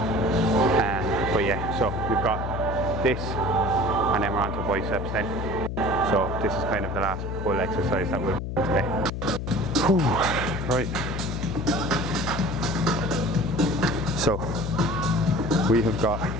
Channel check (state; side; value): noise; left; hum, 4 dB below the sound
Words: But yeah, so we've got this, and then we're on to biceps then. So this is kind of the last pull exercise that we'll do today. Whew. Right. So we have got